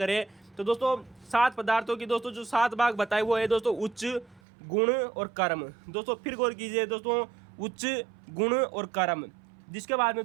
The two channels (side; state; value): left; drops out; at 4.4 s